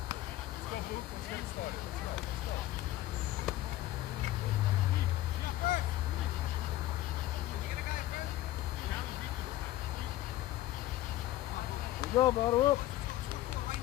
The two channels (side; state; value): right; quieter; 15.2 dB